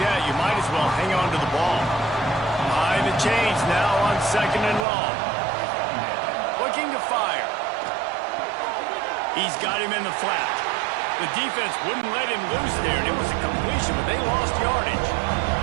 you might as well hang on to the ball. Behind the chains now on second and long. Looking to fire. He's got him in the flat. The defense wouldn't let him loose there, and it was a completion, but they lost yardage.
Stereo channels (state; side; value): drops out; left; at 4.9 s